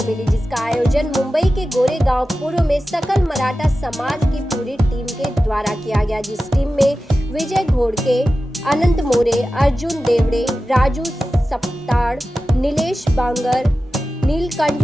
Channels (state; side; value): normal; both; correlation 0.94